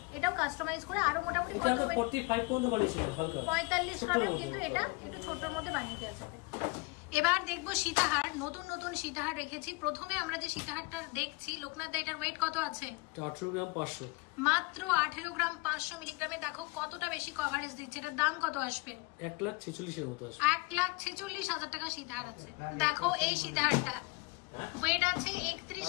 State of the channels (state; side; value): quieter; right; 27.2 dB